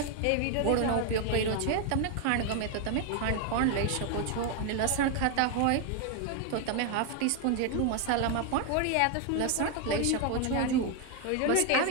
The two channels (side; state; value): both; different; correlation 0.01